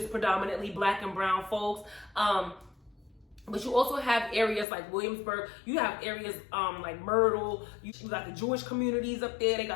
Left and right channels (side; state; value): right; drops out; at 4.7 s